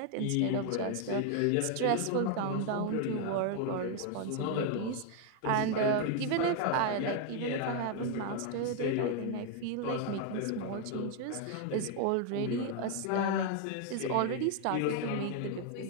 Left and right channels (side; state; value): both; different; correlation 0.01